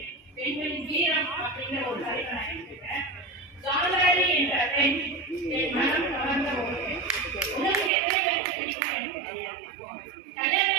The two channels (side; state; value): left; drops out; at 7.9 s